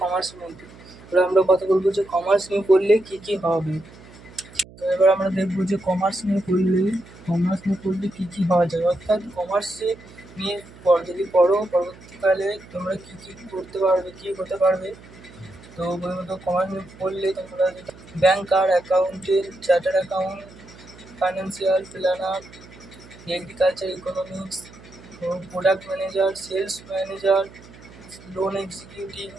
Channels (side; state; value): right; noise; hum, 21 dB below the sound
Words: কমার্সের মধ্যে। এবার আমরা কথা বলবো যে কমার্স নিয়ে পড়লে কী কী হবে। তো এবার আমরা দেখবো যে কমার্স নিয়ে পড়লে কী কী হওয়া যায়, অর্থাৎ কমার্সে নিয়ে যদি পড়ো পরবর্তীকালে তোমরা কী কী করতে পারবে, কী হতে পারবে। তো প্রথমত কমার্স নিয়ে পড়লে তোমরা banker, accountant, chartered account, financial planner, agriculture economics, product manager, sales manager, loan executive,